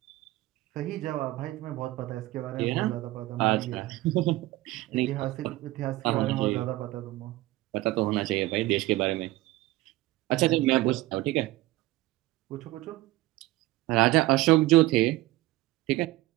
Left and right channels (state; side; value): quieter; left; 18.2 dB